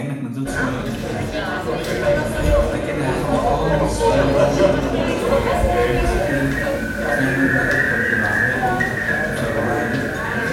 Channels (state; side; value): identical; both; correlation 1.00